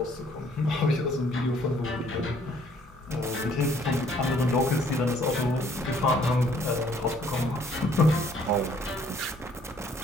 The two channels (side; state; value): both; normal; correlation 0.62